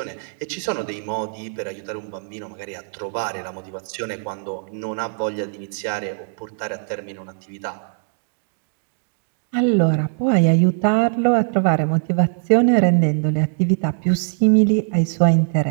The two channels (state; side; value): silent; left; digital silence